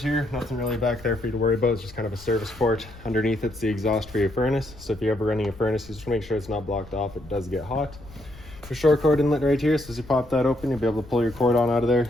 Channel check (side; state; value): left; noise; rumble, 19 dB below the sound